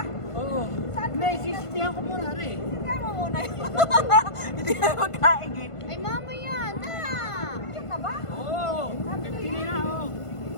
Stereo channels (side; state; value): right; late; 1.5 ms